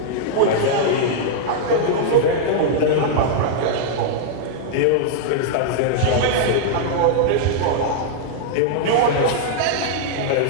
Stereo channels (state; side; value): different; both; correlation -0.01